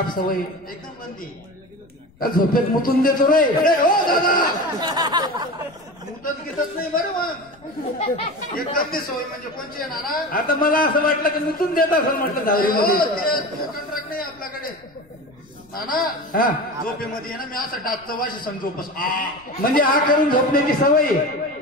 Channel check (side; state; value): left; noise; rumble, 29 dB below the sound